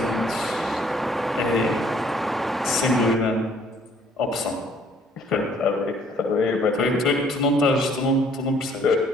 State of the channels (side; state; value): both; normal; correlation 0.61